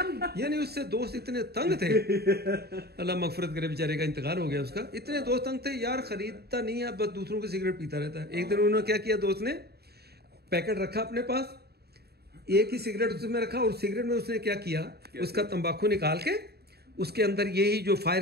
यानी उससे दोस्त इतने तंग थे, अल्लाह मगफरत करे, बेचारे का इंतकाल हो गया उसका। इतने दोस्त तंग थे यार, खरीदता नहीं है, बस दूसरों की सिगरेट पीता रहता है। एक दिन उन्होंने क्या किया, दोस्त ने पैकेट रखा अपने पास, एक ही सिगरेट उसमें रखा, और सिगरेट में उसने क्या किया, उसका तंबाकू निकाल के उसके अंदर यही जो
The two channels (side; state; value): left; late; 0.47 ms